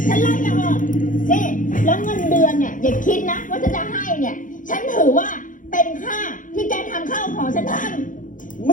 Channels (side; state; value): right; late; 0.38 ms